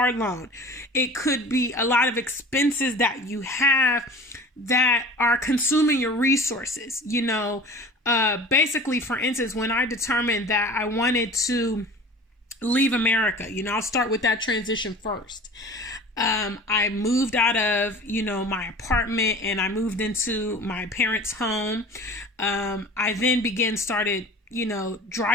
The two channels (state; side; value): normal; both; correlation 0.41